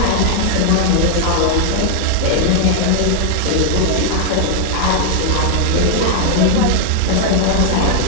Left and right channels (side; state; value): both; different; correlation 0.00